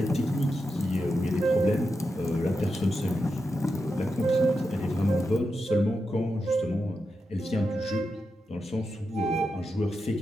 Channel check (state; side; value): normal; both; correlation 0.88